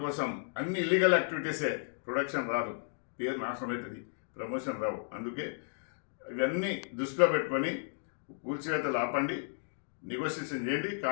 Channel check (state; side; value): silent; right; digital silence